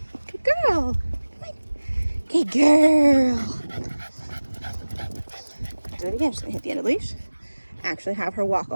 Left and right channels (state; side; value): inverted; both; correlation -1.00